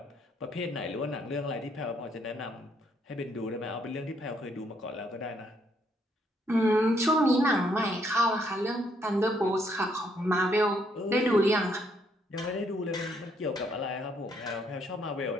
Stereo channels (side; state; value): both; normal; correlation 0.71